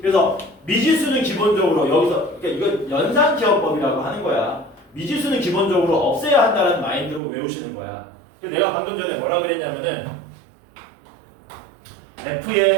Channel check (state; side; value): drops out; left; at 7.2 s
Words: 그래서 미지수는 기본적으로 여기서 그러니까 이거 연산기억법이라고 하는 거야. 미지수는 기본적으로 없애야 한다는 마인드로 외우시는 거야. 내가 방금 전에 뭐라 그랬냐면은